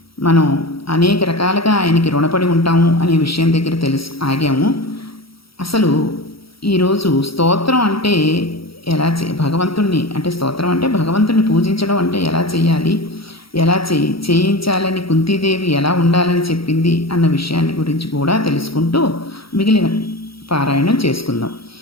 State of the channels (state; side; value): late; right; 0.75 ms